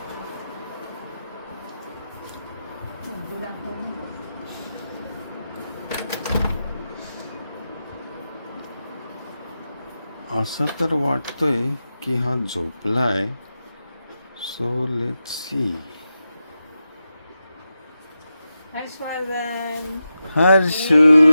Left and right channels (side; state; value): both; inverted; correlation -0.90